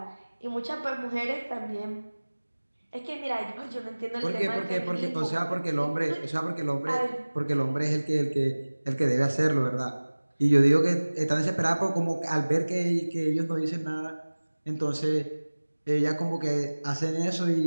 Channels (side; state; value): both; inverted; correlation -1.00